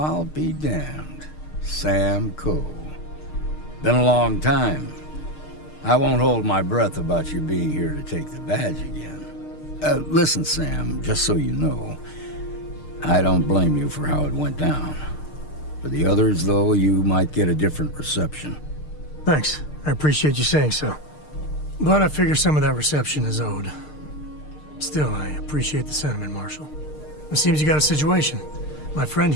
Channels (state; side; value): late; right; 6.6 ms